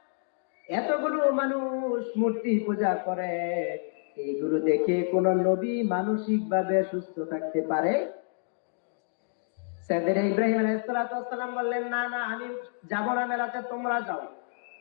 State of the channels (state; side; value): silent; right; digital silence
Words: এতগুলো মানুষ মূর্তি পূজা করে, এইগুলো দেখে কোন নবী মানসিক ভাবে সুস্থ থাকতে পারে? সাইয়েদনা ইব্রাহিম আলাইহিস সালাম বললেন, না না, আমি যাব না মেলাতে, তোমরা যাও।